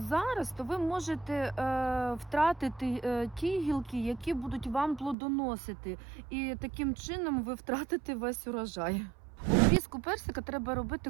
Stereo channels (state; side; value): drops out; left; at 5.2 s